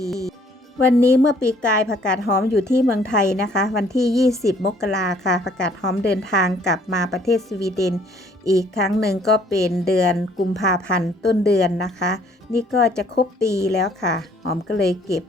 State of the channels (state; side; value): normal; both; correlation 0.61